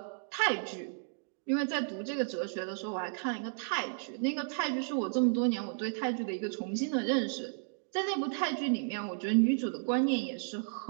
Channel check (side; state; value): left; silent; digital silence